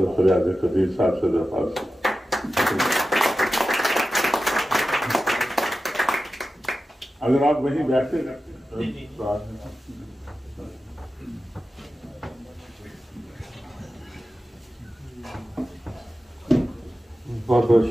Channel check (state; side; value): normal; both; correlation 0.93